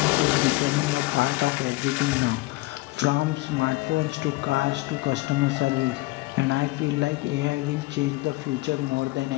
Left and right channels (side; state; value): right; quieter; 21.2 dB